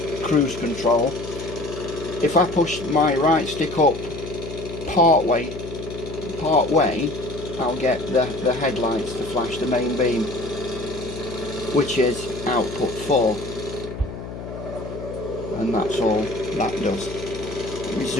cruise control, if I push my right stick up part way, I'll get the headlights to flash the main beam, which is output 4, and that's all that does. Let me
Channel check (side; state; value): left; noise; hum, 10 dB below the sound